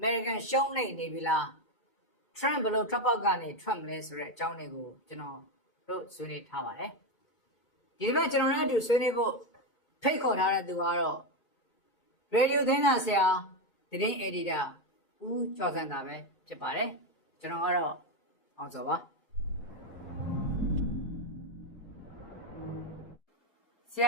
ရှုံးနေပြီလား Trump ဘယ်လိုထွက်ပေါက်ကနေထွက်မလဲဆိုတဲ့အကြောင်းတွေကိုကျွန်တော်တို့ဆွေးနွေးထားပါတယ်ဒီတစ်ပတ်ကျွန်တော်တို့အတူဆွေးနွေးဖို့ဖိတ်ခေါ်ထားတဲ့သူကတော့ Radio သတင်းစာဆရာသတင်း Editor ဦးကျော်စံသာပဲဖြစ်ပါတယ်ကျွန်တော်ကတော့အောင်စောပါဆရ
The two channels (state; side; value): late; right; 2.3 ms